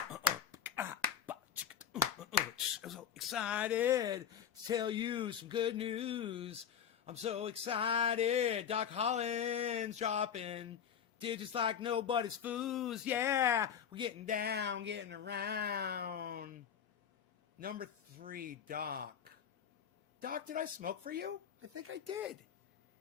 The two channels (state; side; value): quieter; right; 8.4 dB